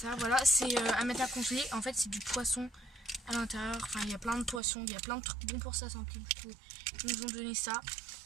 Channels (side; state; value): left; drops out; at 4.6 s